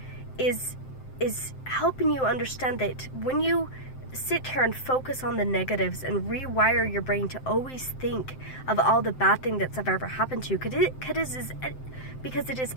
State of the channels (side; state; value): right; late; 7.7 ms